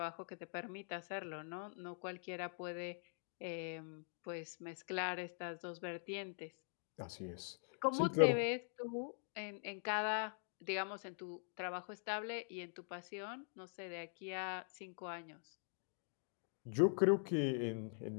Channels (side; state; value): right; silent; digital silence